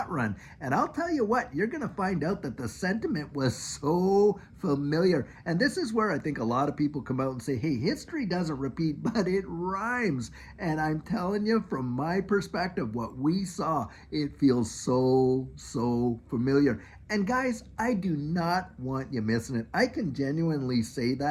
run. And I'll tell you what, you're going to find out that the sentiment was so familiar. And this is where I think a lot of people come out and say, hey, history doesn't repeat, but it rhymes. And I'm telling you, from my perspective, what we saw, it feels so familiar. And guys, I do not want you missing it. I can genuinely say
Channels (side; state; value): both; identical; correlation 1.00